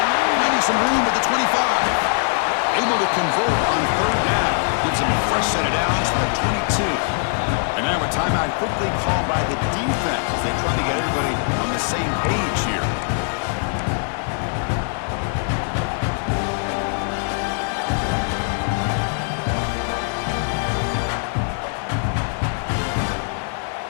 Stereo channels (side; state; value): right; silent; 64 dB below the other